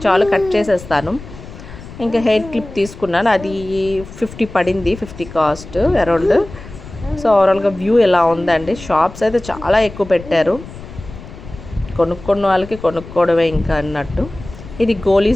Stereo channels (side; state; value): left; noise; rumble, 15 dB below the sound